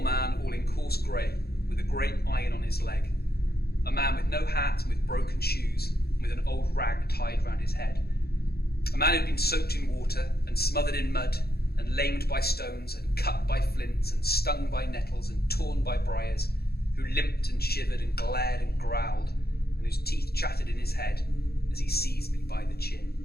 all in coarse grey, with a great iron on his leg. A man with no hat and with broken shoes, and with an old rag tied round his head. A man who'd been soaked in water, and smothered in mud, and lamed by stones, and cut by flints, and stung by nettles, and torn by briars, who limped and shivered and glared and growled, and whose teeth chattered in his head as he seized me by the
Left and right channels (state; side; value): late; right; 0.46 ms